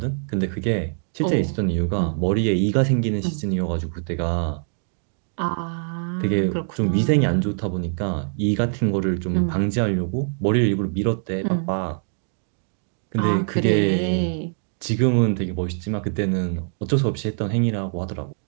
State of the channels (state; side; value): silent; left; digital silence